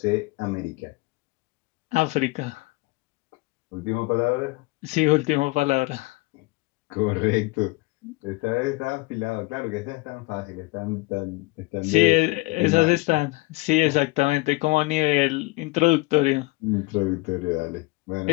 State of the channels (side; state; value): right; quieter; 23.2 dB